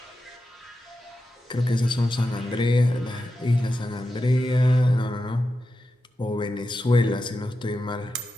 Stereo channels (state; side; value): normal; both; correlation 0.90